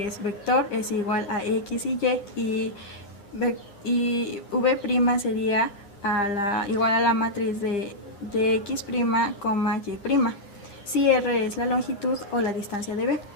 es vector, es igual a x y v' sería igual a la matriz de x', y', si r es la longitud o la distancia de b.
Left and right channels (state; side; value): late; right; 10 ms